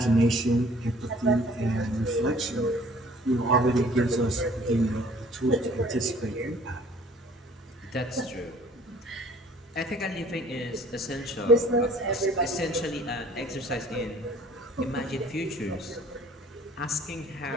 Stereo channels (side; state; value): both; normal; correlation 0.54